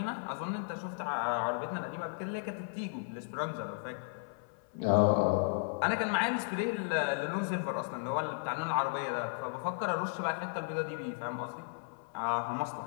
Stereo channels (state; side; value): silent; right; 55 dB below the other